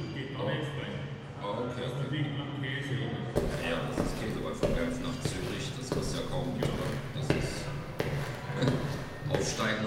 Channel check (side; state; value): both; identical; correlation 1.00